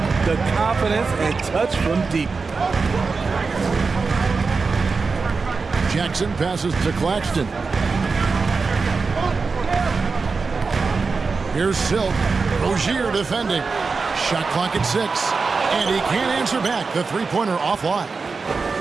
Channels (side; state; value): left; quieter; 4.5 dB